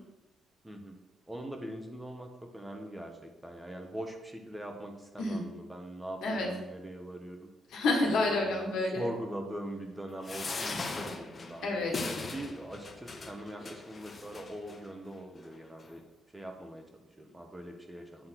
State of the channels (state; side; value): normal; both; correlation 0.78